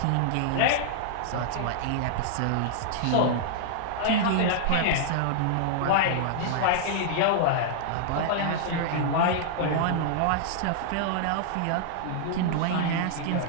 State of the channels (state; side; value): different; both; correlation -0.01